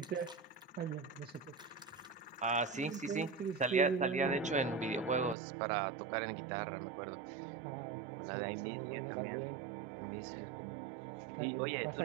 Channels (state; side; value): drops out; left; at 5.4 s